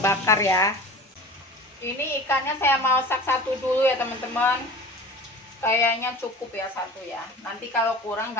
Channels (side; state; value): both; normal; correlation 0.38